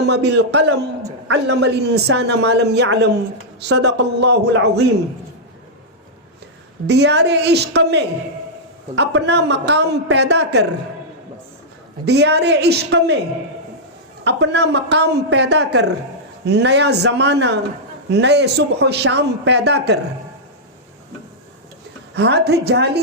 بالقلم علم الإنسان ما لم يعلم صدق الله العظيم. دیار عشق میں اپنا مقام پیدا کر، دیار عشق میں اپنا مقام پیدا کر، نیا زمانہ نئے صبح و شام پیدا کر. ہاتھ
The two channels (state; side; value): normal; both; correlation -0.08